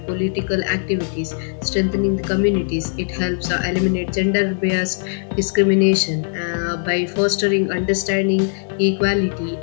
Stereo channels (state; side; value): silent; right; digital silence